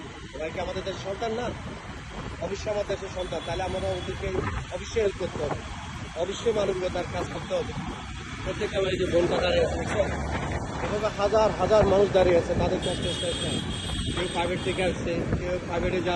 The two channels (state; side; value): identical; both; correlation 1.00